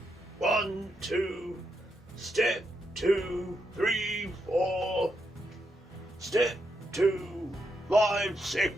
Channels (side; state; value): both; normal; correlation 0.82